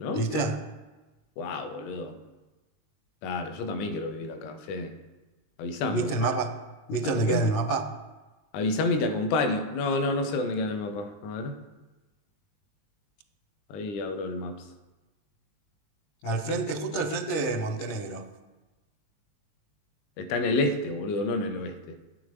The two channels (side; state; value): right; late; 20 ms